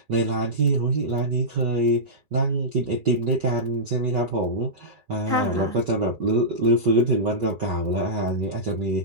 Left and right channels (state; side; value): late; left; 2.3 ms